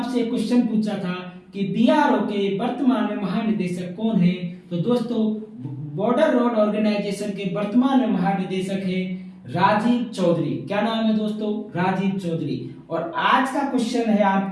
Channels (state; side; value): identical; both; correlation 1.00